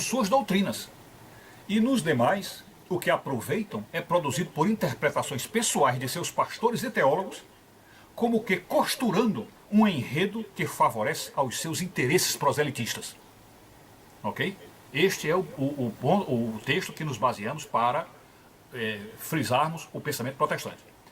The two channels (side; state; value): both; identical; correlation 1.00